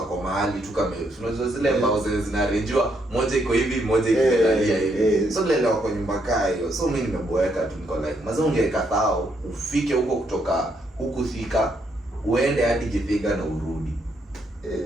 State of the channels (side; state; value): both; normal; correlation 0.75